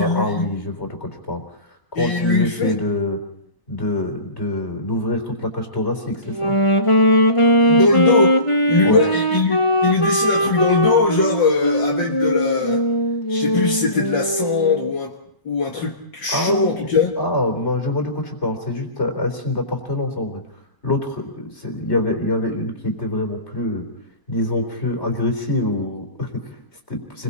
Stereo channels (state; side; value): late; right; 1.0 ms